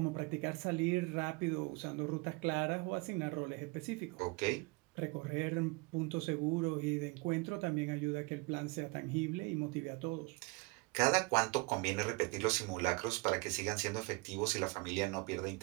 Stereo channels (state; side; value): quieter; left; 26.6 dB